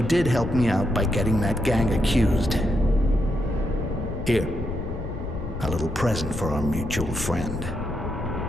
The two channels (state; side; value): noise; left; rumble, 7 dB below the sound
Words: did help me out by getting that gang accused. Here, a little present for our mutual friend.